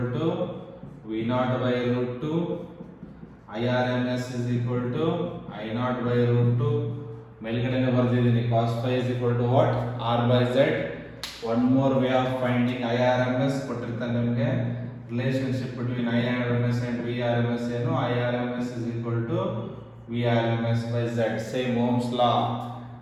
to V naught by root 2, IRMS is equal to I naught by root 2. ಮೇಲ್ಗಡೆನೆ ಬರ್ದಿದ್ದೀನಿ. cos phi is equal to what? R by Z. One more way of finding IRMS ಕೊಟ್ಟಿರ್ತಾನೆ ನಿಮಗೆ. Relationship between IRMS and VRMS ಏನು? IRMS is equal to VRMS by Z. Same Ohm's law.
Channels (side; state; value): both; identical; correlation 1.00